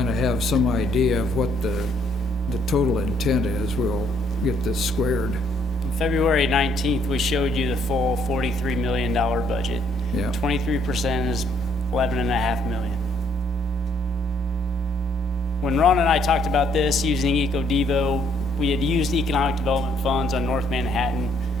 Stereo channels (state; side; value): normal; both; correlation 0.68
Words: of have some idea of what the total intent is, we'll get this squared. On February 19th, we showed you the full $43 million budget. Yeah. 23% is $11.5 million. When Ron and I talked about this using Eco-Devo, we had used economic development funds on North Manhattan